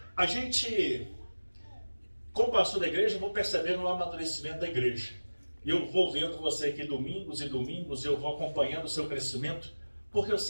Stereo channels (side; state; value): both; inverted; correlation -1.00